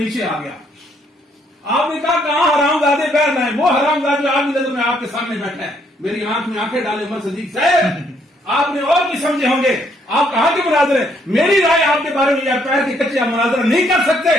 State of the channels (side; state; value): both; normal; correlation 0.70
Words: آ گیا۔ آپ نے کہا کہاں حرام زادے پیر لائے؟ وہ حرام زادے جو آپ کی نظر میں آپ کے سامنے بیٹھا ہے، میری آنکھ میں آنکھیں ڈالے عمر صدیق صاحب، آپ نے اور بھی سمجھے ہوں گے، آپ کہاں کے مناظر ہیں؟ میری رائے آپ کے بارے میں یا پیر کے کچے آپ مناظر نہیں کر سکتے۔